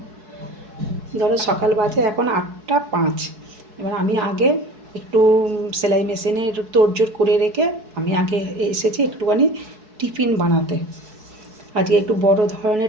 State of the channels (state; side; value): late; left; 4.7 ms